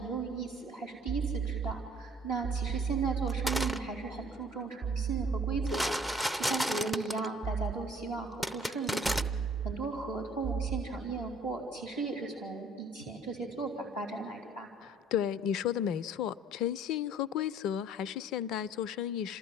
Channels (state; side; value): normal; both; correlation 0.55